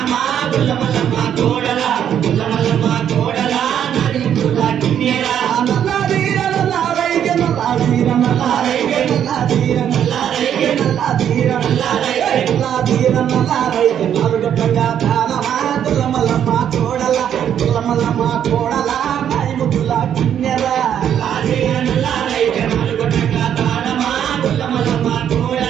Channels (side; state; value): left; quieter; 9.5 dB